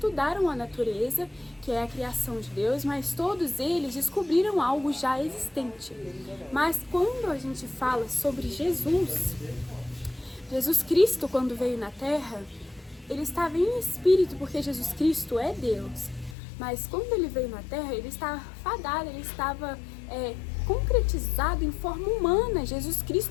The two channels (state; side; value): drops out; right; at 16.4 s